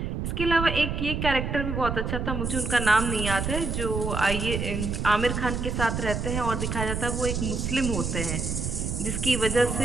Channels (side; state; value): right; noise; rumble, 2 dB below the sound